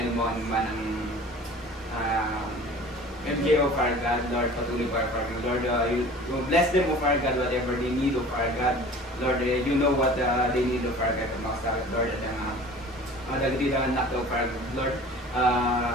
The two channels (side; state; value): both; normal; correlation 0.43